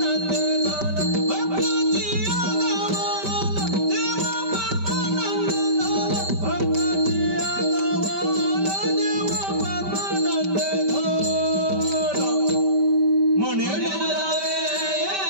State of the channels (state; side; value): late; left; 5.1 ms